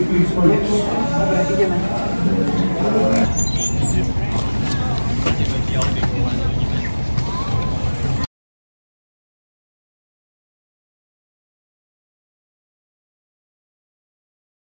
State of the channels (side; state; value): both; inverted; correlation -1.00